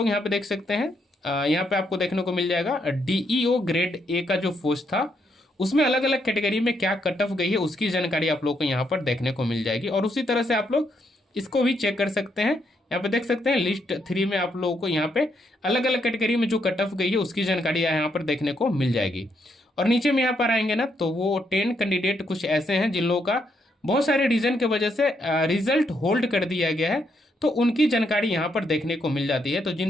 यहाँ पे देख सकते हैं, यहाँ पे आपको देखने को मिल जाएगा डीईओ ग्रेड ए का जो पोस्ट था उसमें अलग अलग कैटेगरी में क्या कट ऑफ गई है उसकी जानकारी आप लोग को यहाँ पर देखने को मिल जाएगी। और उसी तरह से आप लोग इसको भी चेक कर सकते हैं। यहाँ पे देख सकते हैं लिस्ट 3 में आप लोगों को यहाँ पे अलग अलग कैटेगरी में जो कट ऑफ गई है उसकी जानकारी यहाँ पर देखने को मिल जाएगी। और नीचे में यहाँ पर आएंगे ना तो वो 10 कैंडिडेट कुछ ऐसे हैं जिन लोगों का बहुत सारे रीजन के वजह से रिजल्ट होल्ड कर दिया गया है, तो उनकी जानकारी यहाँ पर देखने को मिल जाती है। तो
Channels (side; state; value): both; normal; correlation 0.77